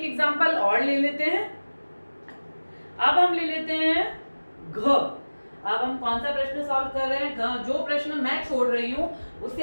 एग्जांपल और ले लेते हैं। अब हम ले लेते हैं घ। अब हम कौन सा प्रश्न सॉल्व कर रहे हैं? घ। जो प्रश्न मैं छोड़ रही हूं उसे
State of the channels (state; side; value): inverted; both; correlation -1.00